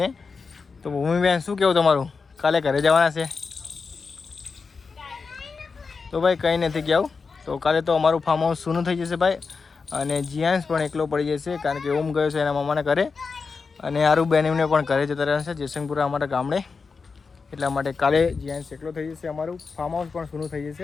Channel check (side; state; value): right; quieter; 4.8 dB